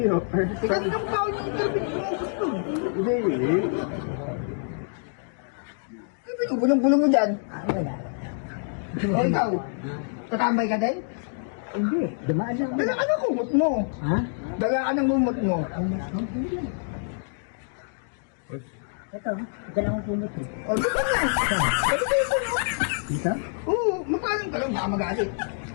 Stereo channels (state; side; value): silent; right; digital silence